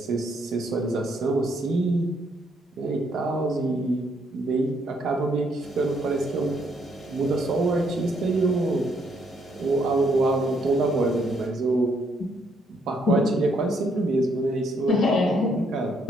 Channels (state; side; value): normal; both; correlation 0.71